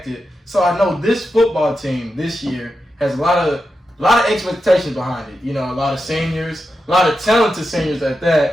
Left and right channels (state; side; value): normal; both; correlation 0.89